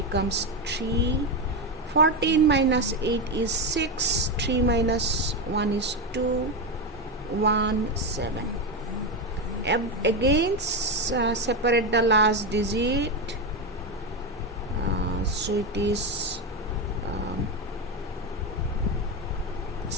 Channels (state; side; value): normal; both; correlation 0.12